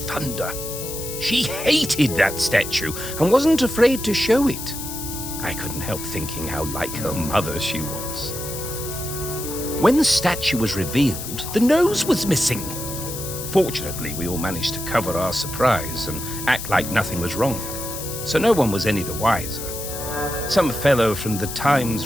She hated that statue and wasn't afraid to show it. I couldn't help thinking how like her mother she was. When the statue was revealed, the nose was missing. Fortunately, we all managed to cover our surprise and act like nothing was wrong, so no one was any the wiser. Some fellow from the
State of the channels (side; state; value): left; noise; hiss, 8 dB below the sound